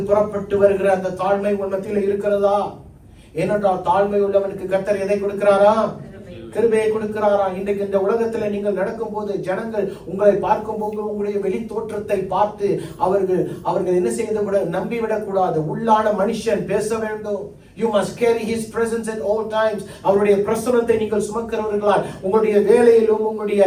புறப்பட்டு வருகிற அந்த தாழ்மை உங்கள் மத்தியில இருக்கிறதா? ஏனென்றால் தாழ்மை உள்ளவனுக்கு கர்த்தர் எதை கொடுக்கிறாரா? கிருபையை கொடுக்கிறாரா? இன்றைக்கு இந்த உலகத்துல நீங்கள் நடக்கும் போது ஜனங்கள் உங்களை பார்க்கும் போது உங்களுடைய வெளி தோற்றத்தை பார்த்து அவர்கள் என்ன செய்ய கூட நம்பிவிடக் கூடாது. உள்ளான மனுஷன் பேச வேண்டும். You must carry his presence at all times. அவருடைய பிரசன்னத்தை நீங்கள் சுமக்கிறவர்களால் உங்களுடைய வேலையிலும் உங்களுடைய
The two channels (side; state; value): both; identical; correlation 1.00